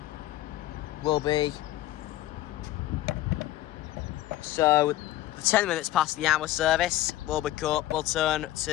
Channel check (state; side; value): quieter; right; 15.1 dB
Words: will be. So the 10 minutes past the hour service will turn